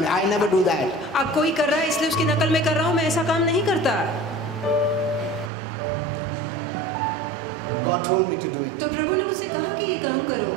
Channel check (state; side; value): drops out; left; at 5.5 s